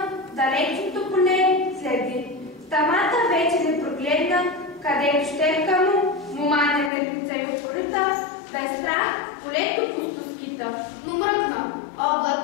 далечното поле следи. В тамата вече не прогледна, където щепка му, момане мъртвица и упорита, без страх полето пусто скита. Но мръкна,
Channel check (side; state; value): right; drops out; at 6.9 s